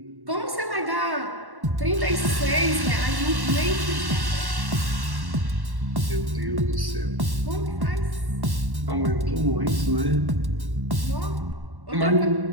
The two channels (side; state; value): left; late; 1.1 ms